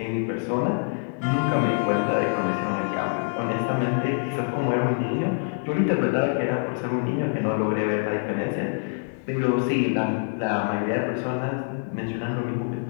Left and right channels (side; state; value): right; silent; 61 dB below the other